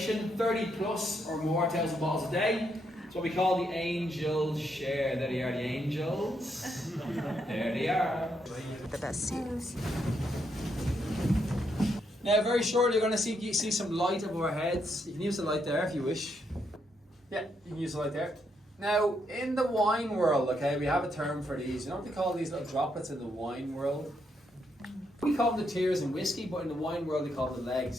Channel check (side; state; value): both; normal; correlation 0.78